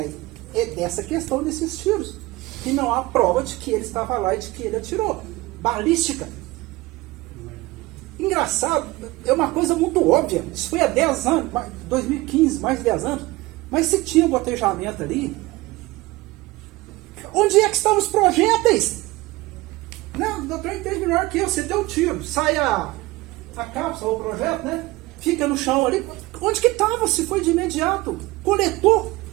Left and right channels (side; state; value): left; quieter; 20.1 dB